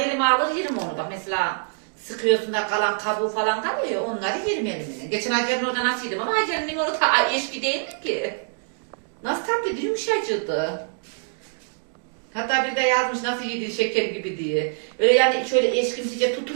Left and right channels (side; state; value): left; silent; digital silence